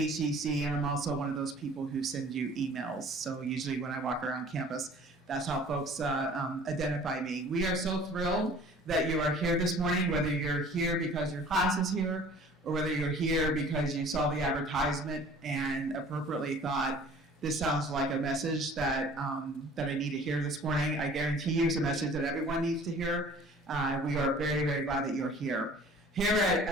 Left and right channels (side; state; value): both; normal; correlation 0.49